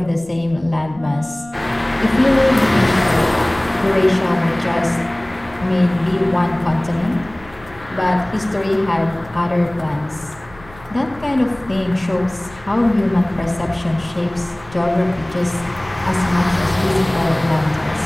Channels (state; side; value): noise; left; rumble, 22 dB below the sound